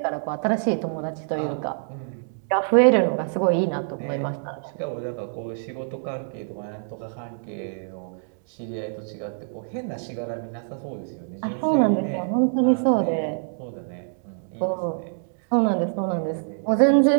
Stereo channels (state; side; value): silent; left; digital silence